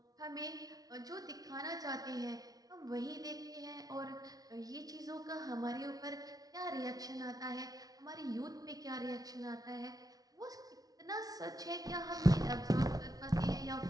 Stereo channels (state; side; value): late; left; 0.18 ms